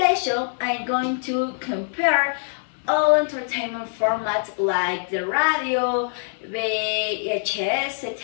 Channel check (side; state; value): right; silent; 60 dB below the other